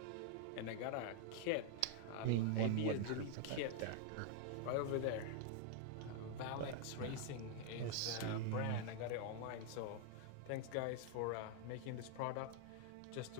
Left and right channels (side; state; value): both; different; correlation 0.00